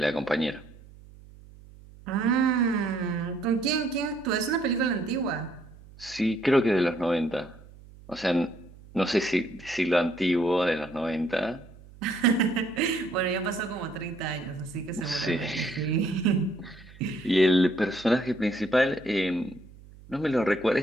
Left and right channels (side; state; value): right; noise; hum, 21 dB below the sound